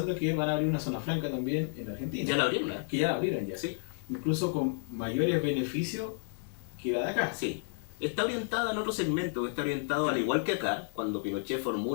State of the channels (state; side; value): silent; right; 57 dB below the other